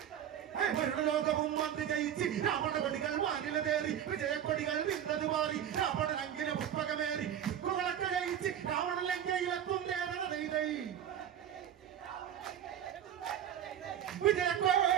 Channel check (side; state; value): left; quieter; 9.8 dB